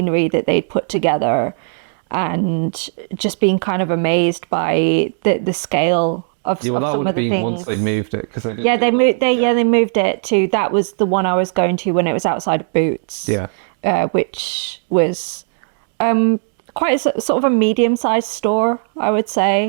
that they'd put together, and just being kind of amazed by the scale of Yeah, well, of that some would of have the been once they things. moved it, because they didn't. Yeah, do they the- moved. They moved it to. That was the one I was going to when it was outside of Boots. Yeah. Which was quite sort of a medium-sized store, I would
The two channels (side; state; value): left; silent; digital silence